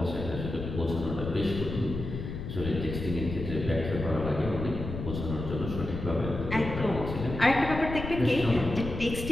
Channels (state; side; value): noise; left; rumble, 6 dB below the sound